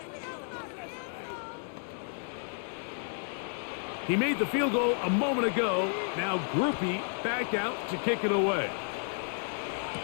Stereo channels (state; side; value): silent; right; 57 dB below the other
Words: He made the field goal a moment ago. Now Groupie back out to kick it away.